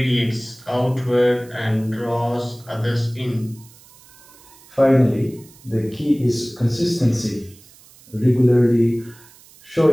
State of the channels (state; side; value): noise; right; hiss, 25 dB below the sound